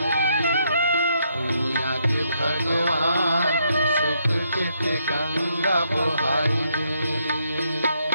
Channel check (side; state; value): both; inverted; correlation -0.74